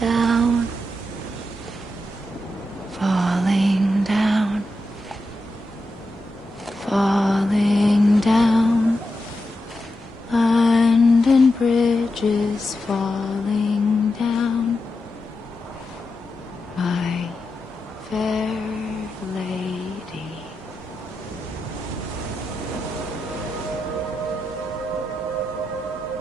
down, falling down, falling down. London bridges falling down, my fair lady.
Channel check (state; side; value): normal; both; correlation 0.88